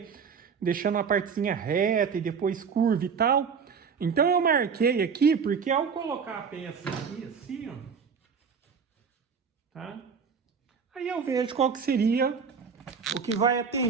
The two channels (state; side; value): quieter; left; 6.2 dB